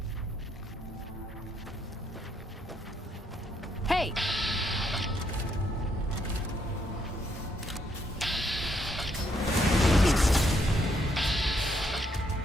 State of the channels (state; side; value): normal; both; correlation 0.74